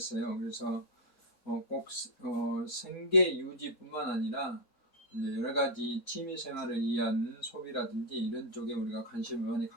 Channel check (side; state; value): both; normal; correlation -0.01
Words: 그래서 꼭 생계 유지뿐만 아니라 이제 여러 가지 취미 생활을 위한 소비라든지 이런 쪽에 우리가 관심을 많이